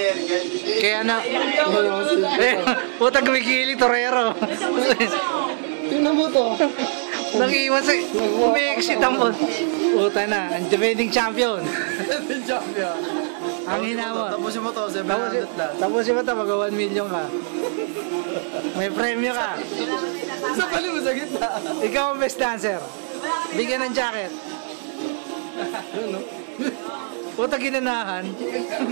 Kaya na... Putang gumigili, Torero. Tingnan mo to. Nag-iwan sa... Umi-exit ang... Puta na, ang defending champion. Defending champion. Ang hinawa. Tapusin mo to, 700 lang. Tapusin mo to, mag-1 million ka. May premyo ka. Sa pali mo sa gitna. Ikaw ang best dancer. Bigyan ng jacket. Ano? Puta ginanahan.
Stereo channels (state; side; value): silent; left; 58 dB below the other